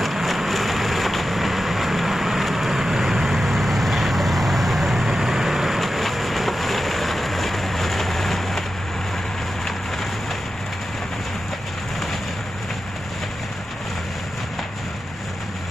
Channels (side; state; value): both; normal; correlation 0.91